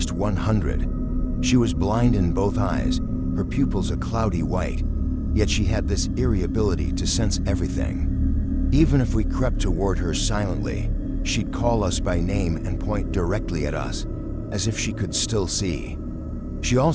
100. She was blind in both eyes, her pupils a cloudy white, yet she had this eerie ability to sense everything. Even if we crept toward her silently, she'd call us by name and point directly at us, as if she could still see. She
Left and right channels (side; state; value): both; identical; correlation 1.00